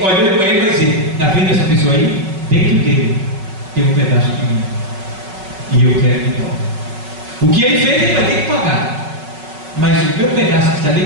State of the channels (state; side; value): late; left; 5.4 ms